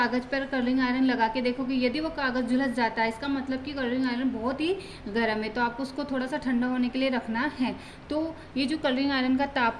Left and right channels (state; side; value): identical; both; correlation 1.00